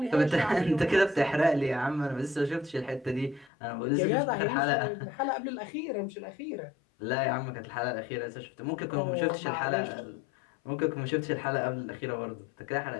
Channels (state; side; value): drops out; right; at 3.5 s